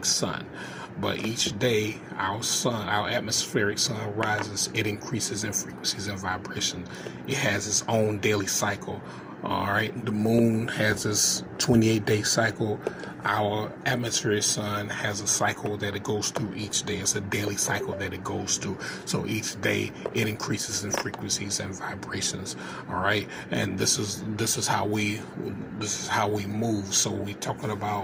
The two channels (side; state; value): both; identical; correlation 1.00